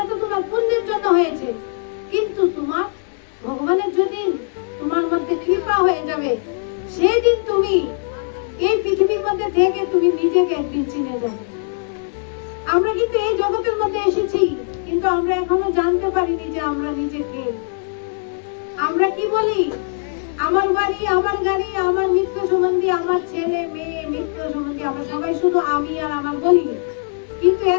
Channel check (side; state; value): right; silent; digital silence